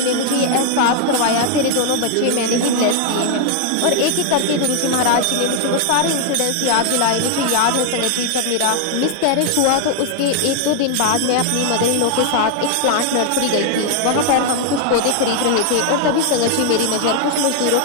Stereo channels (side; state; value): both; different; correlation 0.00